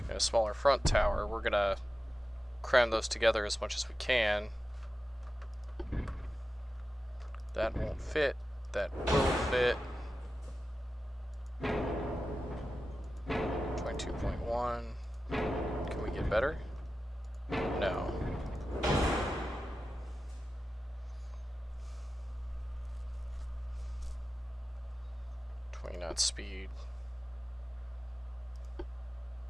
a smaller front tower. We're gonna cram those together as much as we can. That won't fit. That will fit. 22.1. Can we get better? No. 20 knot speed.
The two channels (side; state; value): both; normal; correlation 0.93